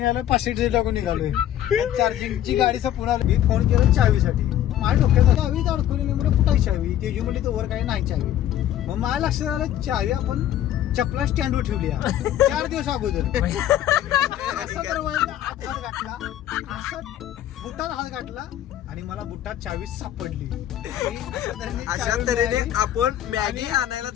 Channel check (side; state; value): right; quieter; 11.8 dB